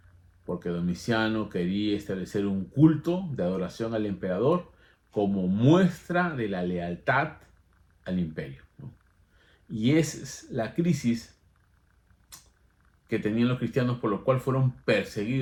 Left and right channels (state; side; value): identical; both; correlation 1.00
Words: porque Domiciano quería establecer un culto de adoración al emperador como muestra de la lealtad al imperio, ¿no? Y esa es la crisis que tenían los cristianos, por lo cual fueron